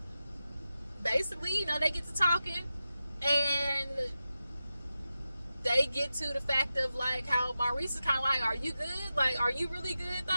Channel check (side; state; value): both; inverted; correlation -0.92